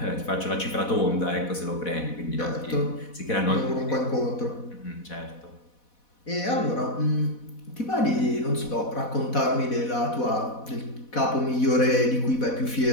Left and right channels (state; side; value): late; right; 4.1 ms